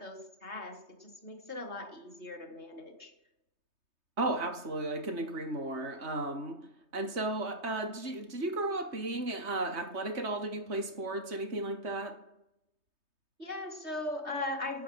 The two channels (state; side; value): late; left; 3.2 ms